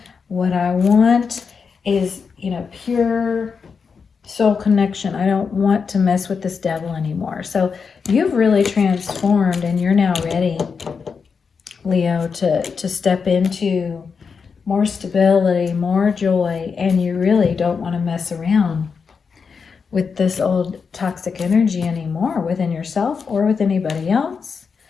What I want is, you know, pure soul connection. I don't want to mess with this devil anymore. So you've really transformed, and you're now ready, Leo, to step into more stability, more joy, and you really don't want to mess around with this old toxic energy anymore within yourself or with anybody else.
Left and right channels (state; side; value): quieter; right; 5.6 dB